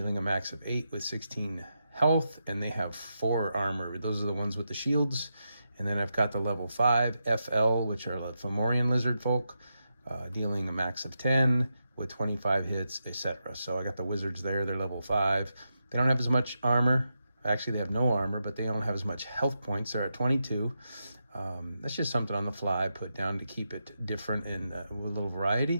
a max of 8 with 16 health, and they have 4 armor. Those are the ones with the shields. And then I've got the level 5 FL, which are the Fomorian lizard folk, dealing a max of 10 with 25 hits, etc. So I got the wizards there. They're level 5. They don't have as much armor. Actually, they have no armor, but they don't have as much health points. They're at 22. That's just something on the fly I put down to keep it different and with a little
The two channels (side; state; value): both; inverted; correlation -0.86